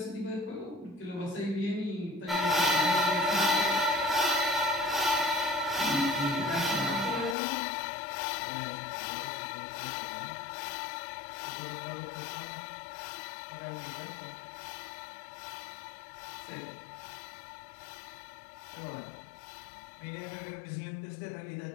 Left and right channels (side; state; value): right; drops out; at 7.4 s